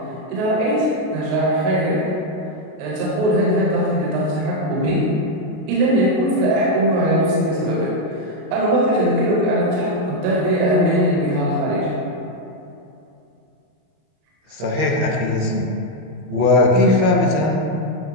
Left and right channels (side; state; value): left; late; 33 ms